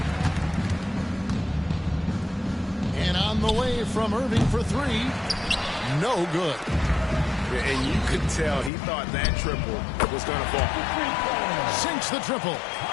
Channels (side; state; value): right; drops out; at 8.7 s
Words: And on the way from Irving for 3. No good. And you could tell he thought that triple was going to fall. Sinks the triple.